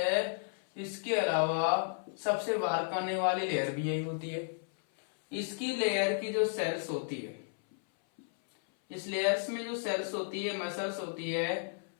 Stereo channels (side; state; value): right; silent; 56 dB below the other